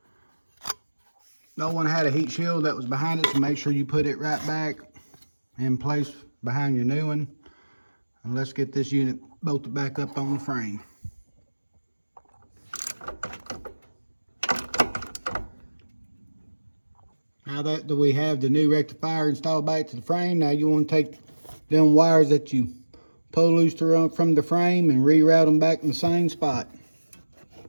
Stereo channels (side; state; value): both; inverted; correlation -1.00